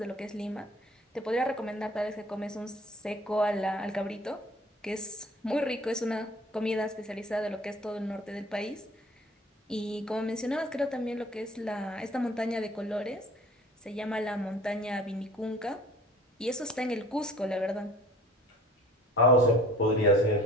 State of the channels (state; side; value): normal; both; correlation 0.49